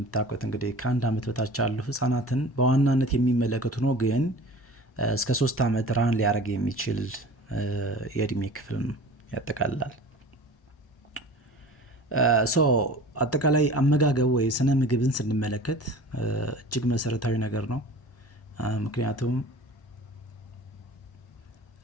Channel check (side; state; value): both; normal; correlation 0.41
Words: እንግዲህ ከአንድ ዓመት በታች ያሉ ህጻናትን በዋናነት የሚመለከቱ ነው፣ ግን እስከ 3 ዓመት ራን ሊያደርግ የሚችል የእድሜ ክፍል ያጠቃልላል። ሶ አጠቃላይ አመጋገብ ወይ ስነ ምግብን ስንመለከት እጅግ መሰረታዊ ነገር ነው። ምክንያቱም